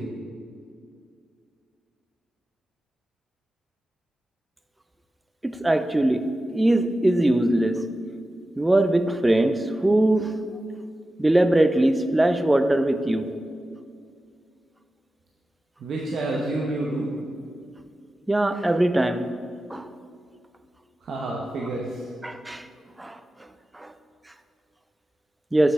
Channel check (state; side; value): normal; both; correlation 0.94